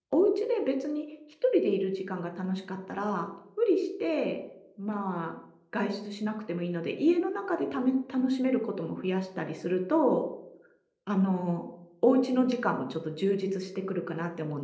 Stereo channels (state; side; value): identical; both; correlation 1.00